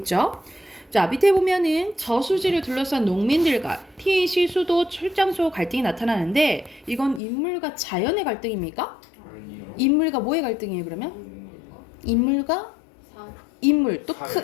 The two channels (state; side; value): drops out; right; at 7.2 s